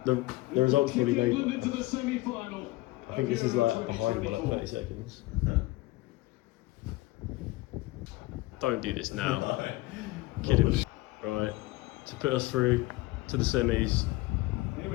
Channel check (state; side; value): quieter; right; 20.1 dB